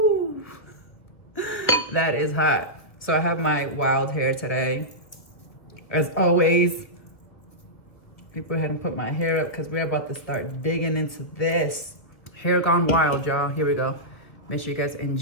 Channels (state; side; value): late; right; 1.8 ms